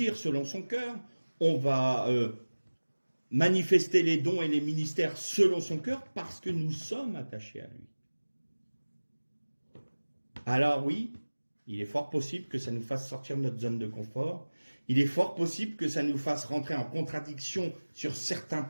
selon son cœur, on va manifester les dons et les ministères selon son cœur, parce que nous sommes attachés à lui. Alors oui, il est fort possible que ça nous fasse sortir de notre zone de confort. Il est fort possible que ça nous fasse rentrer en contradiction sur certains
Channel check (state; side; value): inverted; both; correlation -1.00